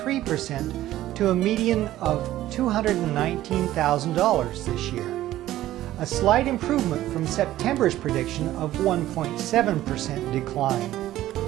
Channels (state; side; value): quieter; left; 14.3 dB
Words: to a median of $219,000 this year, a slight improvement from September's prediction of 1.7% decline.